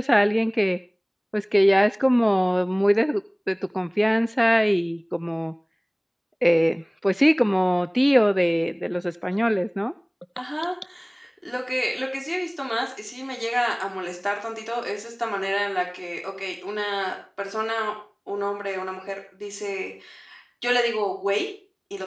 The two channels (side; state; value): both; identical; correlation 1.00